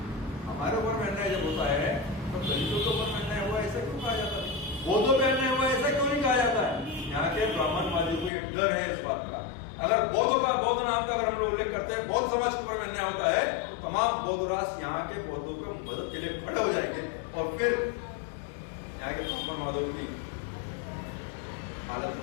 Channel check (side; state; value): right; drops out; at 8.3 s